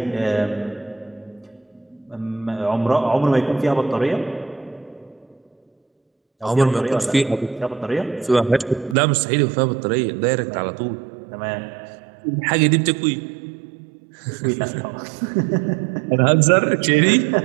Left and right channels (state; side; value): drops out; left; at 9.0 s